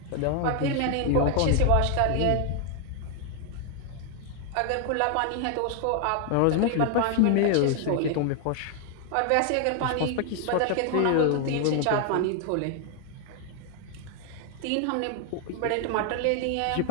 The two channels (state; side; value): different; both; correlation 0.00